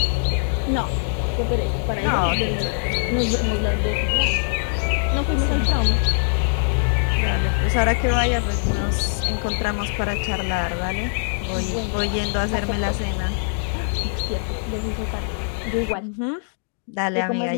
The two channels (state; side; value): silent; right; digital silence